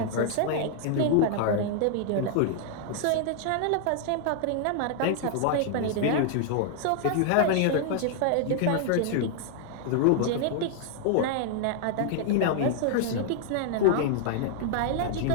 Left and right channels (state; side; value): different; both; correlation -0.01